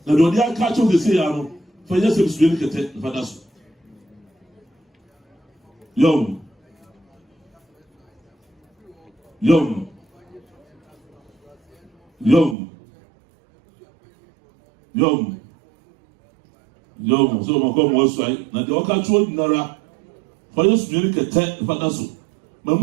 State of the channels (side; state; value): left; drops out; at 12.6 s